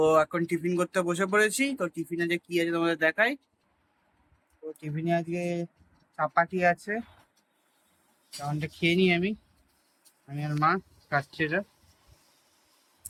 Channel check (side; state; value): both; identical; correlation 1.00